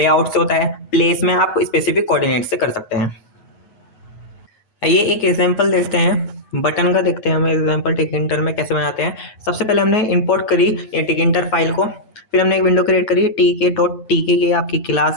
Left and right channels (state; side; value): late; right; 9.3 ms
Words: से होता है, प्लेस में आप स्पेसिफिक कोऑर्डिनेट से कर सकते हैं। आइए एक एग्जांपल देखते हैं, बटन का देखते हैं हम एग्जांपल टिकिंटर में कैसे बनाते हैं। सबसे पहले हमने इंपोर्ट करी ये टिकिंटर फाइल को, फिर हमने एक विंडो क्रिएट करी, टी के डॉट टी के, ये आपकी